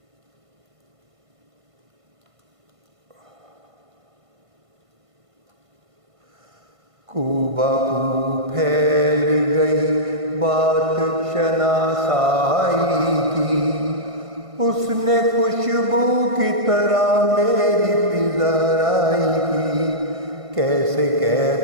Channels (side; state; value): left; late; 1.5 ms